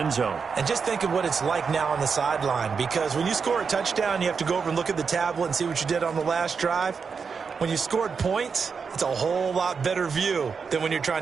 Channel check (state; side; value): quieter; left; 5.7 dB